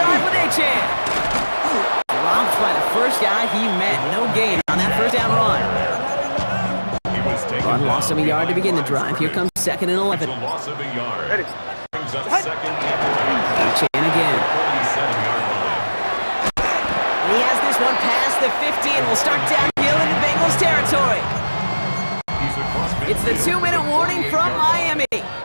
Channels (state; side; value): inverted; both; correlation -1.00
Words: with Achane. Dropped by the first guy he met. No gain on that 1st down run. He was taken Run down loss of a yard to begin the behind drive. Here comes 2nd and 11. a loss of a yard. Brings up 2nd and 11. Achane again. 47-yard line. And he has this one past the 50 and will start downhill into Bengals territory. He's across It's the midfield. 2-minute warning from Miami. A gain